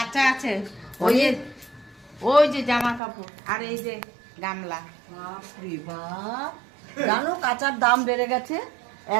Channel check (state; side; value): drops out; left; at 3.0 s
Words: আছে, ওই যে জামা কাপড় আর এই যে গামলা। বাপরে বাপ, জানো কাঁচার দাম বেড়ে গেছে।